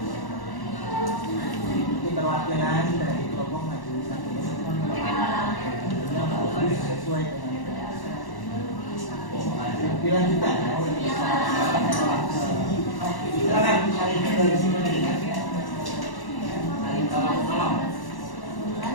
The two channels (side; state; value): right; late; 1.1 ms